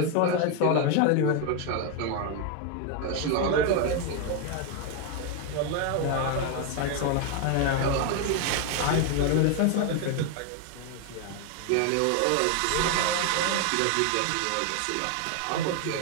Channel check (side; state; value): both; different; correlation 0.01